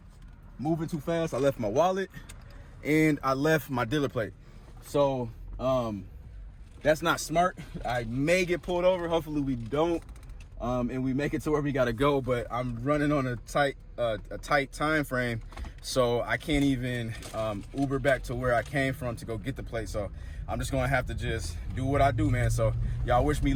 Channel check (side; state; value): both; identical; correlation 1.00